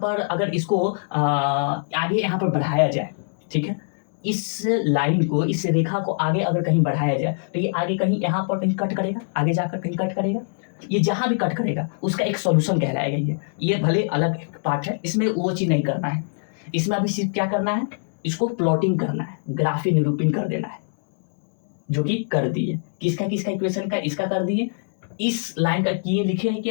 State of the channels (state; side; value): silent; right; 61 dB below the other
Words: अगर इसको आगे यहाँ पर बढ़ाया जाए, ठीक है, इस लाइन को, इस रेखा को आगे अगर कहीं बढ़ाया जाए तो ये आगे कहीं यहाँ पर कहीं कट करेगा, आगे जाकर कहीं कट करेगा, ये जहां भी कट करेगा उसका एक सॉल्यूशन कहलाएगा। ये भले अलग पार्ट है, इसमें वो चीज नहीं करना है। इसमें अभी सिर्फ क्या करना है, इसको प्लॉटिंग करना है, ग्राफी निरूपण कर देना है, जो कि कर दिए। किसका किसका इक्वेशन का, इसका कर दिए। इस लाइन का किए लिखे है